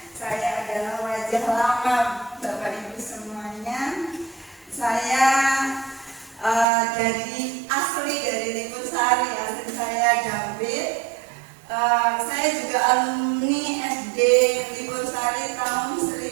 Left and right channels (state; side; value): drops out; left; at 6.7 s